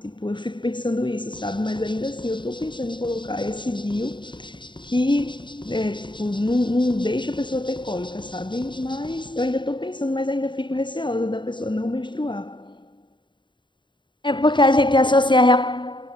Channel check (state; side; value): late; right; 0.23 ms